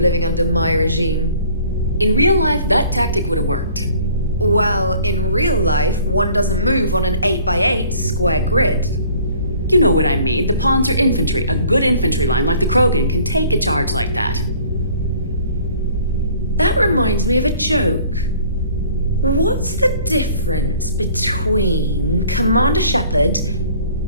under my regime. In real life, that tactic would have worked. Well, in real life, one doesn't move on an 8x8 square grid. You know what I mean. The pawns are infantry. A good infantry line like the Krogan can take a charge like that. That reminds me of a joke. What's the difference between Commander Shepard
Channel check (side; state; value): both; inverted; correlation -0.54